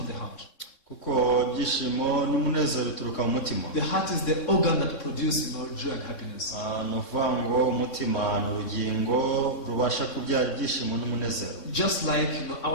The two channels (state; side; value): late; right; 3.6 ms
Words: the heart. Kuko ibyishimo n'umunezero bituruka mu mutima. The heart is the organ that produces joy and happiness. Ni ukuvuga ngo umutima ni urugingo rubasha kubyara ibyishimo n'umunezero. Just like